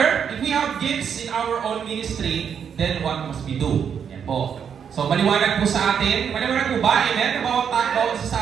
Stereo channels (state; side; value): quieter; left; 7.6 dB